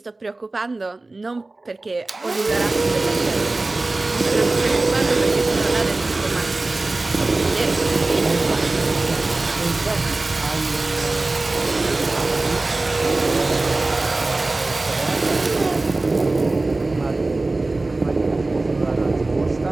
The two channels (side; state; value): left; quieter; 3.1 dB